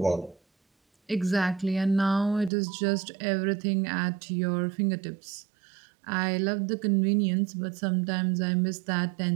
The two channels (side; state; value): left; drops out; at 2.5 s